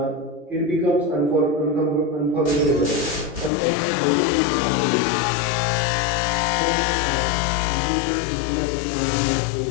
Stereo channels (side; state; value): right; drops out; at 3.5 s